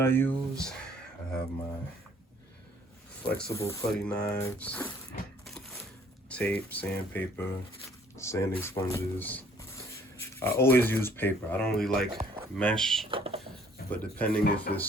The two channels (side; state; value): both; normal; correlation 0.59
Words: use. I have my flexible putty knives, tape, sandpaper, sanding sponges. I always use paper. I don't really like mesh, but depending if